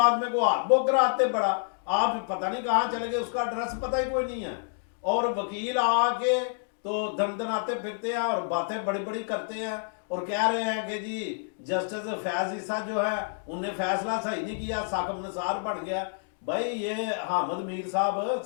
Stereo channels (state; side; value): silent; right; digital silence